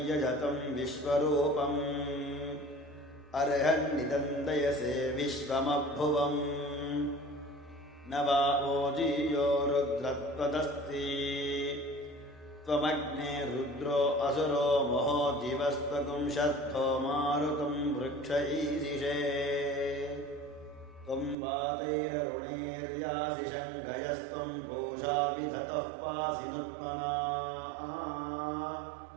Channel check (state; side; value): drops out; left; at 21.4 s